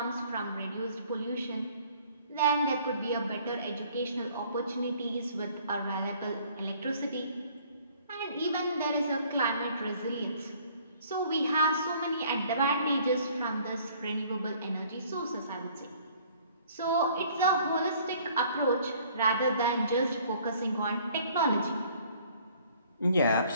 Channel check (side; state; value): both; inverted; correlation -0.57